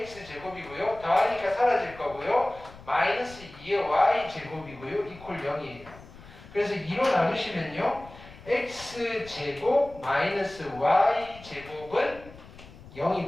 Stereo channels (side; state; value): left; noise; rumble, 19 dB below the sound